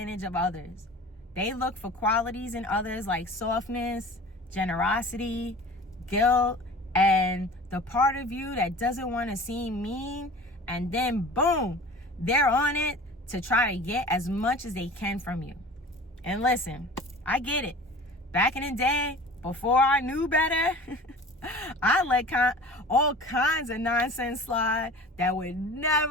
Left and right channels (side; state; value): both; normal; correlation 0.41